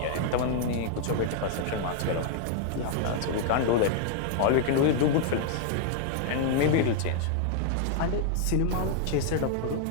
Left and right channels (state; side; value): different; both; correlation -0.01